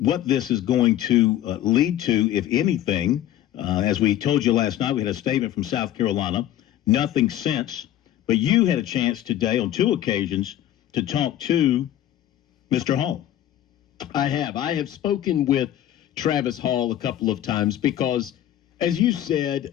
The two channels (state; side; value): quieter; right; 12.3 dB